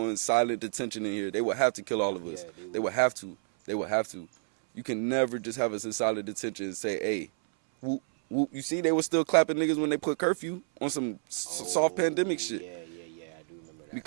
silent detention in here. They would have to kill all of us. Yeah, they would. They would have to. They would have to. You can never just have us in silent detention and say, hey, whoop. You see, they were still clapping niggas when they put curfew on some soft pandemic shit. Yeah, I do remember that.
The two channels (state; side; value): silent; left; 58 dB below the other